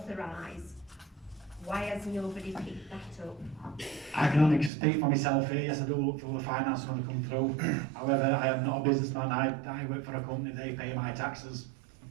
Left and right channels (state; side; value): drops out; left; at 4.7 s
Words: Why has nobody picked that up? I can only speak for myself here. Yes, I do look through the finance when they come through. However, I am not a businessman. I work for a company. They pay my taxes.